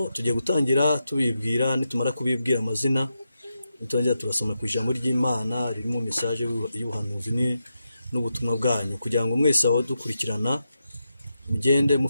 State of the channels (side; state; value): both; inverted; correlation -0.87